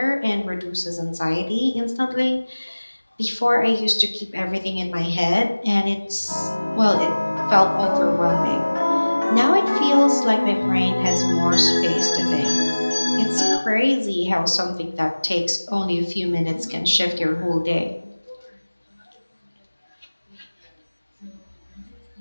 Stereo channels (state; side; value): inverted; both; correlation -1.00